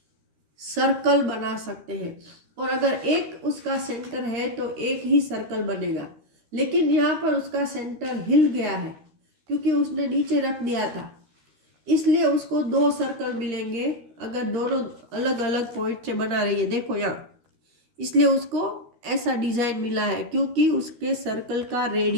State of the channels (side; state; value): left; late; 13 ms